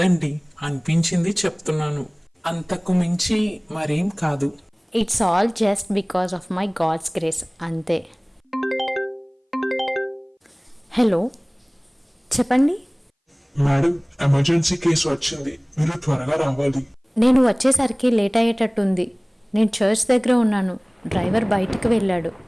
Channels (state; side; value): identical; both; correlation 1.00